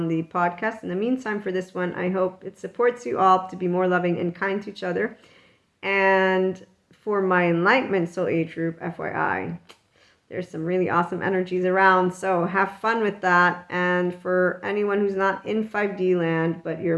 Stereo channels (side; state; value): both; identical; correlation 1.00